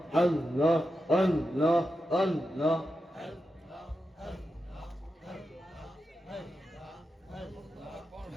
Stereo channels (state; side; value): normal; both; correlation 0.89